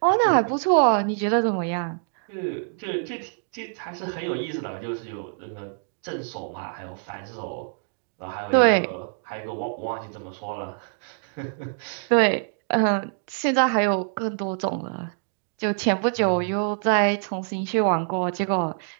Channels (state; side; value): silent; left; digital silence